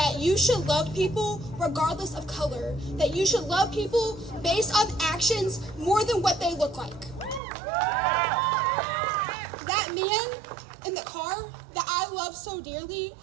you should love people regardless of color, that you should love people based on actions more than what they look like. That man in the car that I love so dearly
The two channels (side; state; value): left; drops out; at 7.4 s